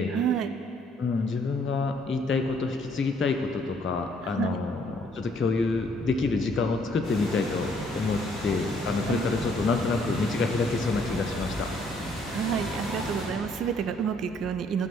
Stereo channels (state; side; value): normal; both; correlation 0.65